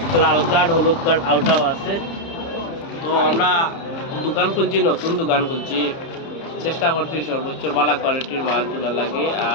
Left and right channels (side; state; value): right; late; 30 ms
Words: লাল কার্ড হলুদ কার্ড আউটাও আছে তো আমরা দোকান খুলছি নতুন দোকান খুলছি চেষ্টা করছি সর্বোচ্চ ভালো কোয়ালিটির মাল তোলা লাগে